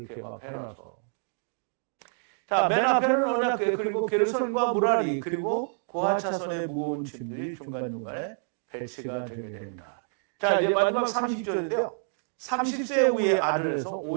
막 해놔서. 자, 맨 앞에는 언약궤, 그리고 게르손과 무라리, 그리고 고핫 자손의 무거운 짐들이 중간중간에 배치가 되게 됩니다. 자, 이제 마지막 30절인데요. 30세 후의 아들에서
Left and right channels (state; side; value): silent; left; digital silence